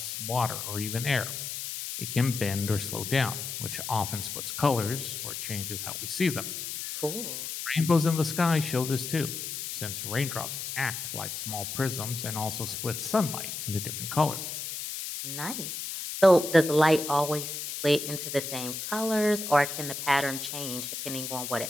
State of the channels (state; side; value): noise; left; hiss, 6 dB below the sound